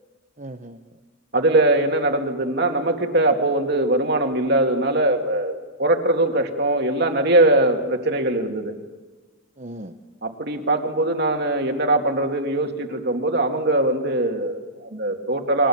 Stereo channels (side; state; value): both; normal; correlation -0.19